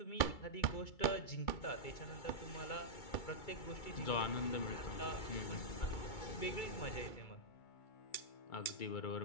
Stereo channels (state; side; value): late; right; 2.3 ms